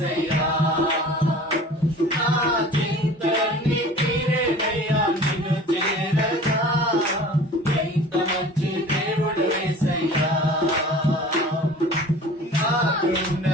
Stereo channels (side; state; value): both; normal; correlation 0.43